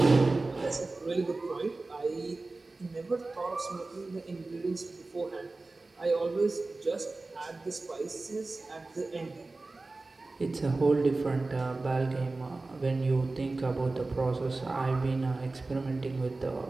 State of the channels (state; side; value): quieter; left; 3.3 dB